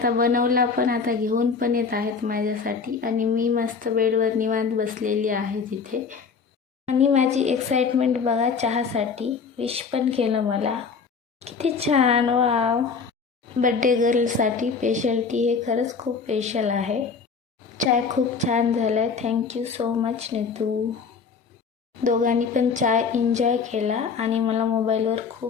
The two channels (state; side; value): quieter; right; 5.4 dB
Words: बनवला पण, आता घेऊन पण येत आहेत माझ्यासाठी. आणि मी मस्त बेडवर निवांत बसलेली आहे तिथे. आणि माझी एक्साइटमेंट बघा चहासाठी. विश पण केलं मला. किती छान. वाव. बड्डे गर्लसाठी स्पेशल टी हे खरंच खूप स्पेशल आहे. चाय खूप छान झाला आहे. Thank you so much Neetu. दोघांनी पण चाय एन्जॉय केला आणि मला मोबाईलवर